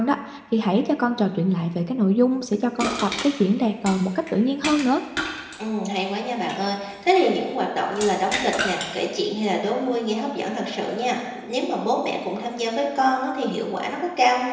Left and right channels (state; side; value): identical; both; correlation 1.00